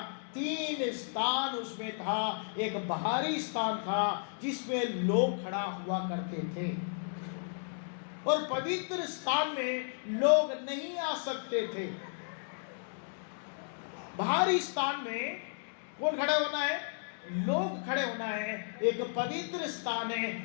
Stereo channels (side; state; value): right; silent; digital silence